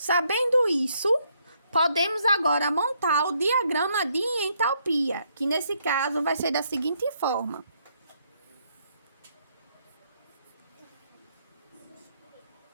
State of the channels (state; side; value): inverted; both; correlation -0.73